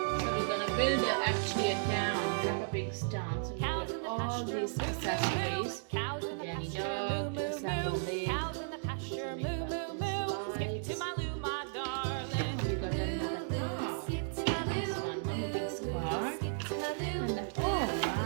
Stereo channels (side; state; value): left; silent; digital silence